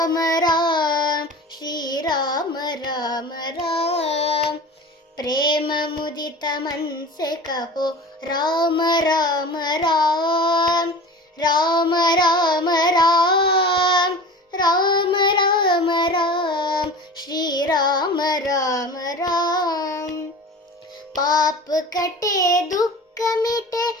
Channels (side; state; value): both; normal; correlation 0.36